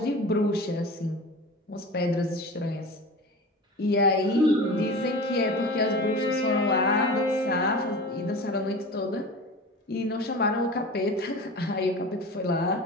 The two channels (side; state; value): both; normal; correlation 0.34